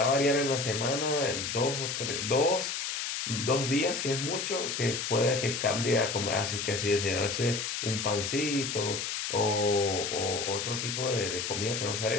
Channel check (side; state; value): left; noise; hiss, 3 dB below the sound